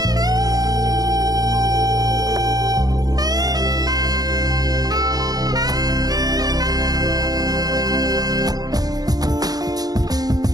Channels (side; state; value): left; late; 0.19 ms